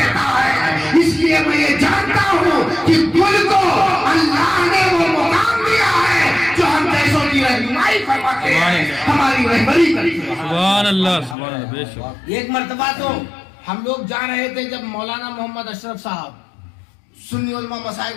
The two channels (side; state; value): right; drops out; at 11.4 s